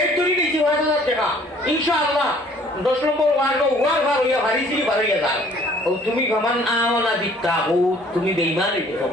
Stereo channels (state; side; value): normal; both; correlation 0.56